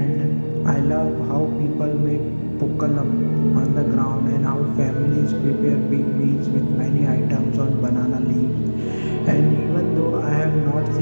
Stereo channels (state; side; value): inverted; both; correlation -1.00